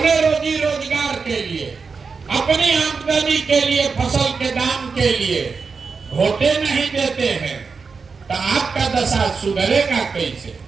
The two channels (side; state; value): left; quieter; 5.0 dB